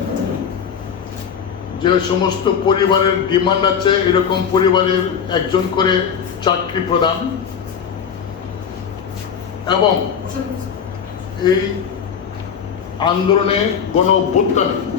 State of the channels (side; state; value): right; quieter; 7.3 dB